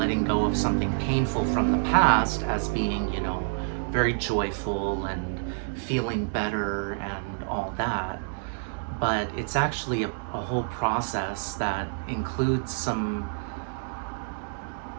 go of something painful from the past as being, you know, very joyful and feeling better and all that. But it's actually a whole process that includes some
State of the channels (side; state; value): left; silent; digital silence